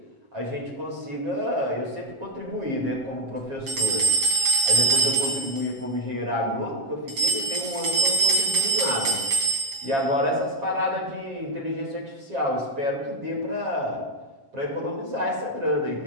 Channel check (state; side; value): late; left; 7.7 ms